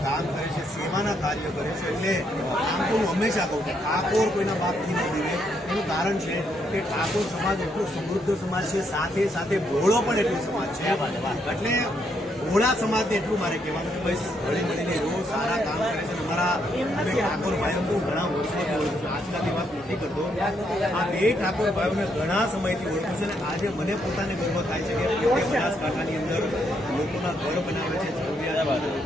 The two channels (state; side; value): normal; both; correlation 0.75